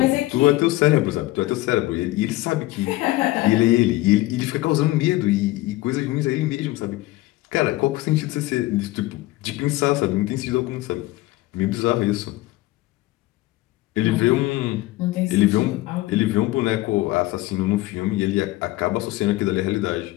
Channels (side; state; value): right; quieter; 18.3 dB